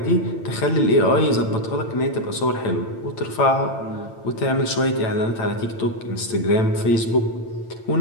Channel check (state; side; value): late; right; 8.9 ms